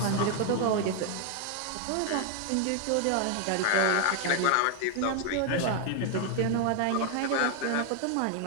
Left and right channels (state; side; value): different; both; correlation 0.00